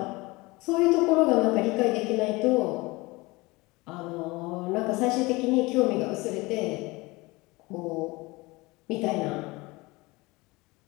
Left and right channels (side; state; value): right; quieter; 23.0 dB